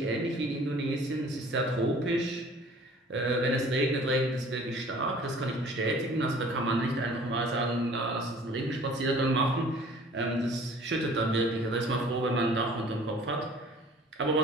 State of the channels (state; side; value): normal; both; correlation 0.50